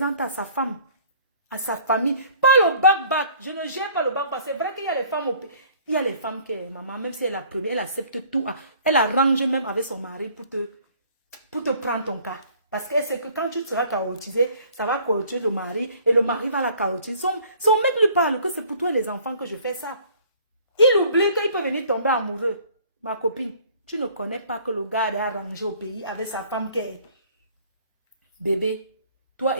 à sa femme, à sa famille. Pas le bac-bac. Je ne gère pas le bac-bac. C'est vrai qu'il y a les femmes au pays. Il y a les femmes qui, maman, même si elle est la première, elle accepte tout. Elle arrange même avec son mari pour te prendre ton cas. Parce qu'elle sait que quand tu seras chaotisé, ça va chaotiser le mari et le mari va la chaotiser. Son mec lui parle que c'est pour toi et les enfants que je fais ça. Il oublie qu'il peut venir tomber amoureux. Ma copine, tu ne connais pas que le gars est arrangé au pays avec sa femme qui est... Bébé, toi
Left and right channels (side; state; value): both; inverted; correlation -0.55